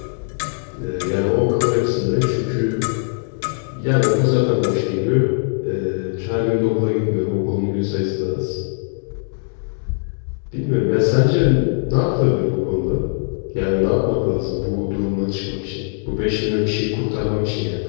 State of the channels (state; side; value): silent; right; 65 dB below the other